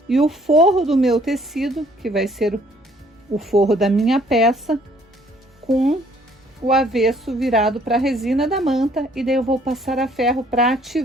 e o forro do meu tecido, que vai ser o forro da minha peça, com o avesso virado para a resina da manta, e daí eu vou passar a ferro para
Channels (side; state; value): both; normal; correlation 0.61